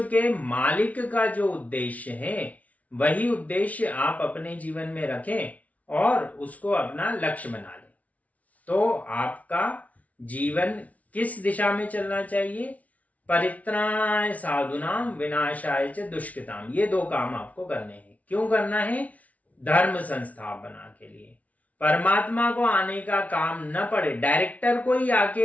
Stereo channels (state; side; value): late; right; 0.069 ms